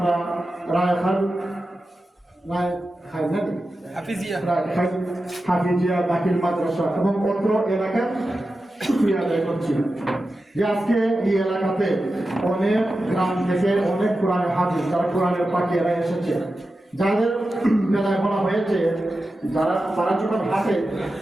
হাফিজিয়া দাখিল মাদ্রাসা এবং অত্র এলাকার শুকরিয়া আদায় করছি যে আজকে এই এলাকাতে অনেক গ্রাম থেকে অনেক কোরআনের হাফিজ, যারা কোরআনের পাখিরা এসেছে, যাদের বেলায় বলা হয়েছে তারা যখন হাঁটে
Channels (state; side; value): normal; both; correlation 0.92